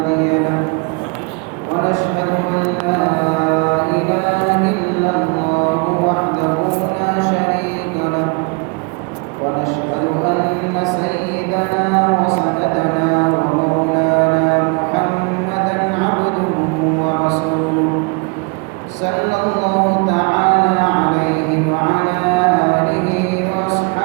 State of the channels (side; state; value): left; quieter; 32.2 dB